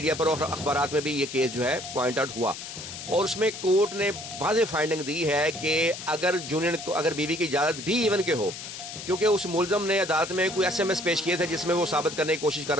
پر اور اخبارات میں بھی یہ کیس جو ہے پوائنٹ آؤٹ ہوا. اور اس میں کورٹ نے واضح فائنڈنگ دی ہے کہ اگر بیوی کی اجازت بھی ایون کے ہو، کیونکہ اس ملزم نے عدالت میں کوئی SMS پیش کیے تھے جس میں وہ ثابت کرنے کی کوشش کر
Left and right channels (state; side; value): noise; left; hiss, 10 dB below the sound